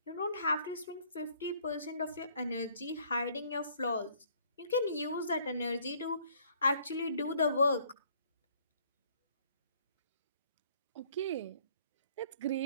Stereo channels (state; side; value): inverted; both; correlation -0.60